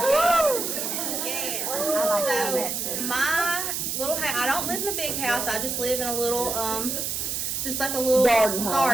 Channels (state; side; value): noise; right; hiss, 2 dB below the sound